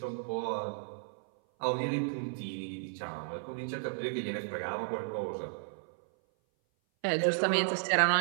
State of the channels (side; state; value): left; silent; 55 dB below the other